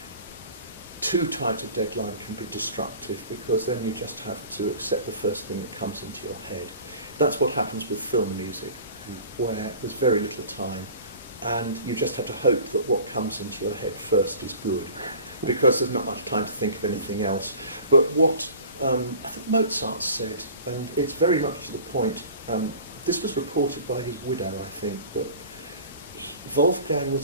Too tight a deadline can be destructive, because then you just have to accept the first thing that comes into your head. That's what happens with film music, where there's very little time, and you just have to hope that what comes into your head first is good, because there's not much time to think of anything else. But what I think Mozart said, and it's very much to the point, this was reported by his widow, I think, but Wolfgang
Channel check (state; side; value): inverted; both; correlation -0.43